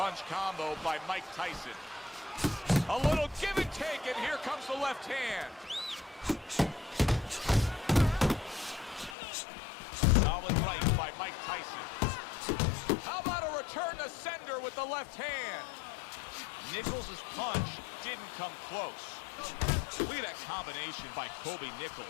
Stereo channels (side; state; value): right; drops out; at 9.2 s